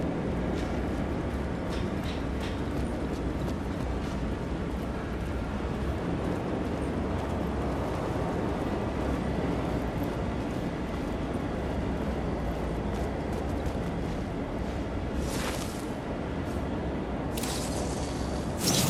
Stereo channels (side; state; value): both; identical; correlation 1.00